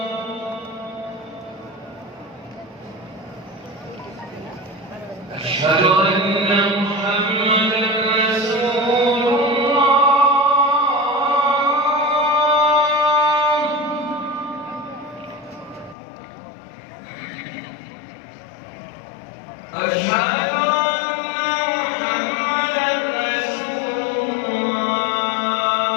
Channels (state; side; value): drops out; right; at 16.0 s